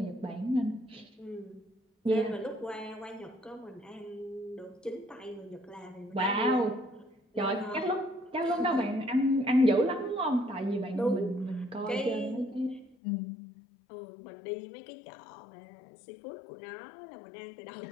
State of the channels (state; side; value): drops out; right; at 13.0 s